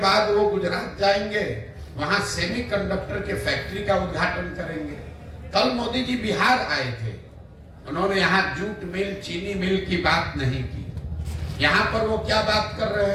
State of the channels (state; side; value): identical; both; correlation 1.00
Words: बाद वो गुजरात जाएंगे, वहां सेमीकंडक्टर के फैक्ट्री का उद्घाटन करेंगे। कल मोदी जी बिहार आए थे, उन्होंने यहाँ जूट मिल, चीनी मिल की बात नहीं की। यहाँ पर वो क्या बात कर रहे